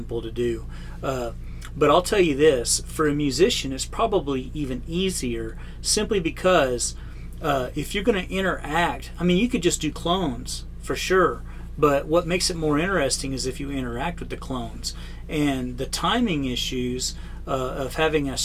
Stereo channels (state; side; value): identical; both; correlation 1.00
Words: to do, but I'll tell you this, for a musician it's probably even easier, simply because if you're going to interact, I mean, you could just do clones for sure, but what makes it more interesting is if you interact with the clones. And the timing issues of having a